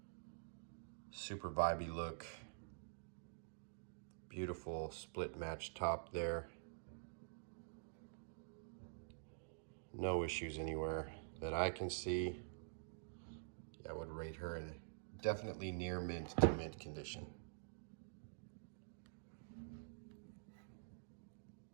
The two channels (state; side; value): silent; left; digital silence